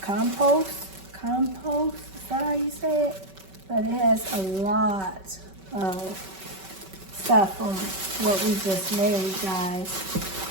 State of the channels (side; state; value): left; late; 5.2 ms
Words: compost, is that how you say it? But it has a lot of stuff from what we just made, guys.